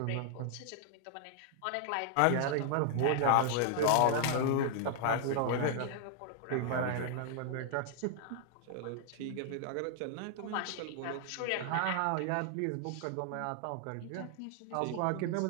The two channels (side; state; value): both; different; correlation 0.00